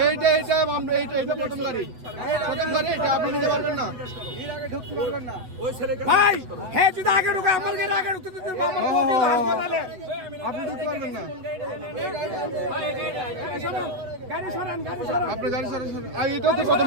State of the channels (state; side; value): late; left; 8.0 ms